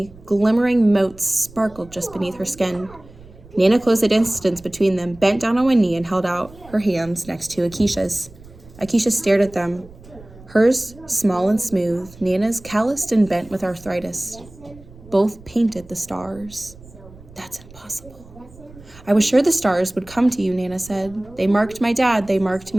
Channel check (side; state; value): right; noise; rumble, 21 dB below the sound